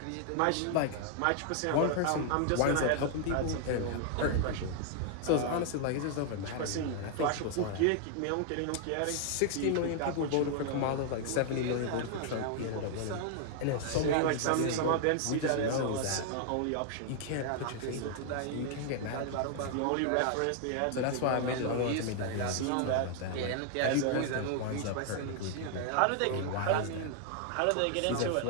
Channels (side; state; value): both; different; correlation 0.00